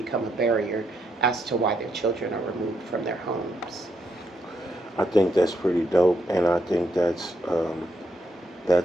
a barrier as to why their children are removed from their homes. I think that's pretty dope, and I think that's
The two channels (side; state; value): both; normal; correlation 0.78